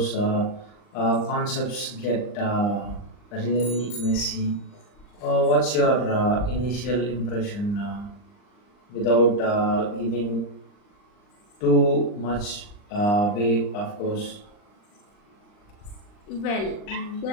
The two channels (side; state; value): right; late; 39 ms